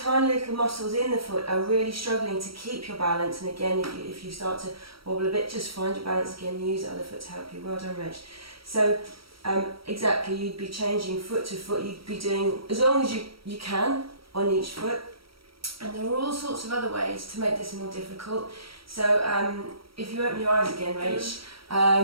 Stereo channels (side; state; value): left; late; 0.75 ms